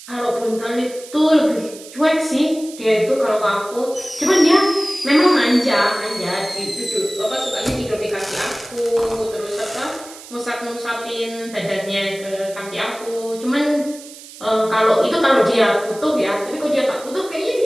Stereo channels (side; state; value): right; noise; hiss, 17 dB below the sound